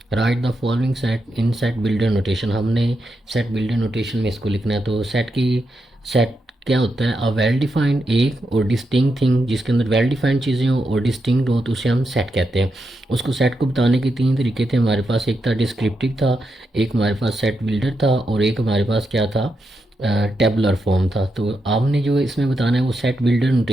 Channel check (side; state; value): both; normal; correlation 0.85